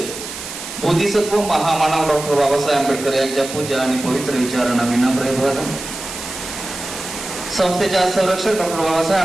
बोधिसत्व महामानव डॉक्टर बाबासाहेब आंबेडकर यांच्या पूज्य आणि पवित्र विचारांना विनम्र अभिवादन. संस्थेच्या संरक्षक डॉक्टर बाबासाहेब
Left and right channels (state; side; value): noise; right; hiss, 10 dB below the sound